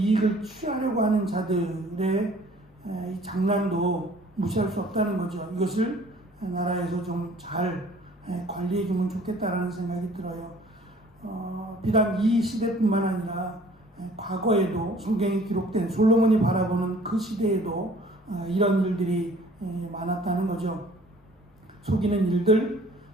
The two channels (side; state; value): both; normal; correlation 0.53